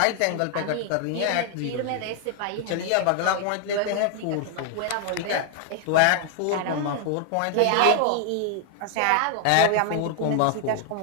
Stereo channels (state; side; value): different; both; correlation 0.00